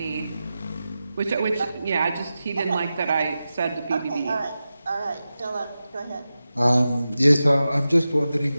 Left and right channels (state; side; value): inverted; both; correlation -0.93